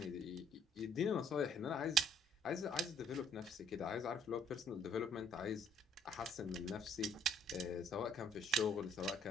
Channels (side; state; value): both; normal; correlation 0.61